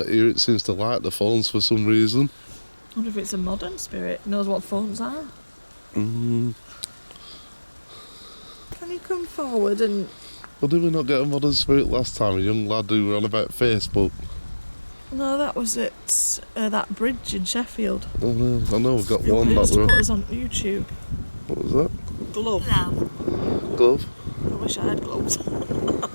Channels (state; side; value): inverted; both; correlation -1.00